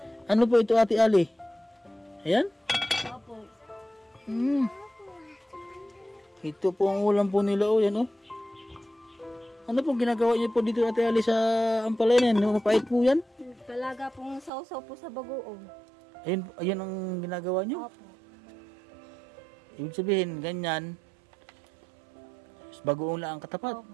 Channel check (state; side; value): drops out; left; at 14.5 s